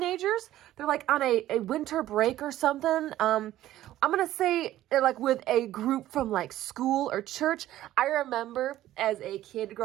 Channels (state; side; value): quieter; left; 13.9 dB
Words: They're like on a winter break or something. I'm going to say they're like with a group from like school or church. I remember as a kid